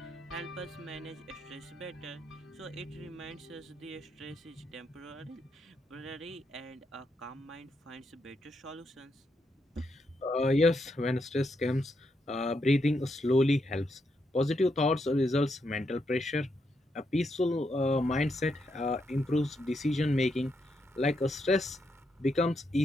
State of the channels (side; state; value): both; normal; correlation 0.80